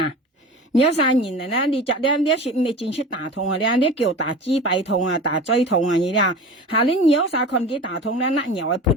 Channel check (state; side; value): normal; both; correlation 0.35